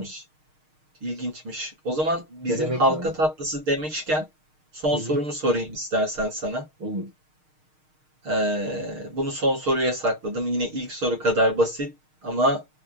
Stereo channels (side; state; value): left; late; 6.5 ms